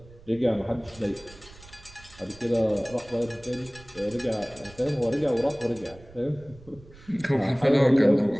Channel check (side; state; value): right; noise; rumble, 22 dB below the sound